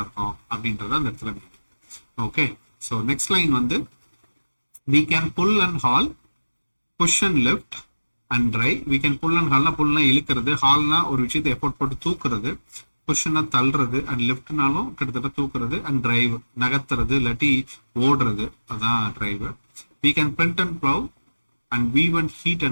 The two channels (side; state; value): both; inverted; correlation -1.00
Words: இருக்கோம் அப்படின்றத அந்த இடத்துல. ஓகே, ஸோ நெக்ஸ்ட் லைன் வந்து we can pull and haul, push and lift and drive. We can pull and haulனா புல்னா இழுக்கிறது, ஹால்னா ஒரு விஷயத்தை எஃபோர்ட் போட்டு தூக்குறது, புஷ்னா தள்ளுறது, அண்ட் லெஃப்ட்னாலும் கிட்டத்தட்ட தூக்குறது, அண்ட் டிரைவ் நகர்த்துறது இல்லாட்டி ஓடுறது, அதான் drive. We can print and plow and weave and heat